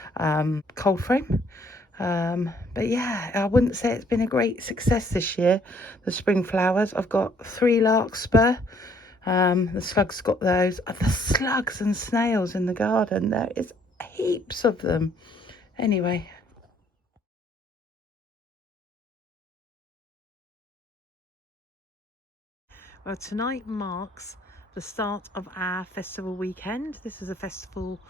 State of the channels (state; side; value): normal; both; correlation 0.64